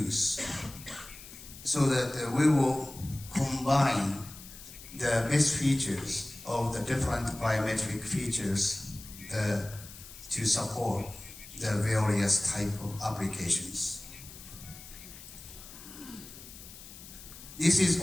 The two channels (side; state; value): left; noise; hiss, 16 dB below the sound